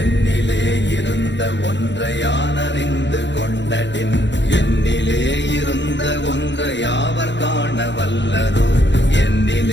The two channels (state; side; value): late; right; 0.52 ms